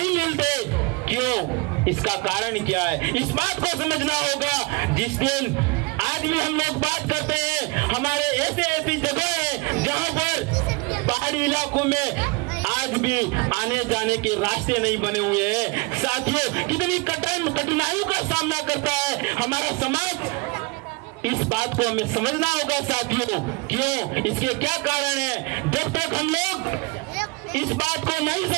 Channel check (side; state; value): left; quieter; 26.4 dB